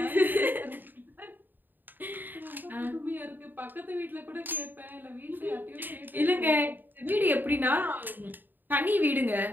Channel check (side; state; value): left; late; 0.091 ms